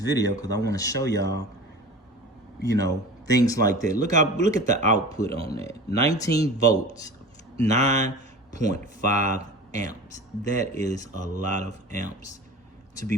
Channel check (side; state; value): both; normal; correlation 0.36